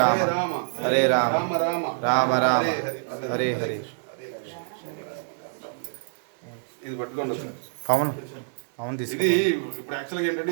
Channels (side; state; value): left; silent; digital silence